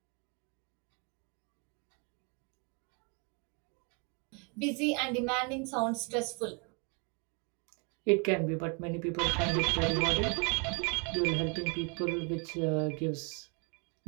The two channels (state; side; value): quieter; left; 34.9 dB